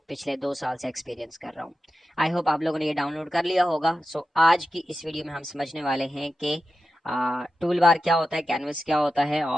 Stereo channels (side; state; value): both; normal; correlation 0.92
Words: पिछले 2 साल से एक्सपीरियंस कर रहा हूँ। आई होप आप लोगों ने ये डाउनलोड कर लिया होगा। सो आज की इस वीडियो में हम समझने वाले हैं कि टूल बार क्या होता है, कैनवस क्या होता है,